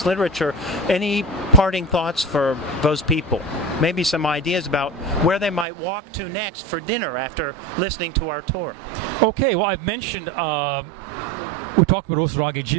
literature. Any parting thoughts for those people? Maybe some ideas about where they might walk to next for dinner after listening to our tour. Okay, well, I've mentioned, we talked about Osaragi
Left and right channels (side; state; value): left; drops out; at 5.7 s